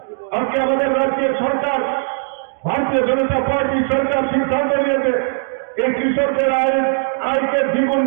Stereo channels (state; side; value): silent; left; digital silence